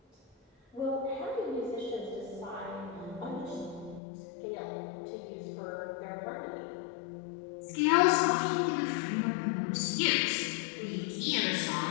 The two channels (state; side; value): drops out; right; at 4.0 s